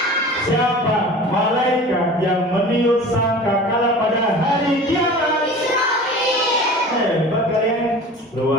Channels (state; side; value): normal; both; correlation 0.39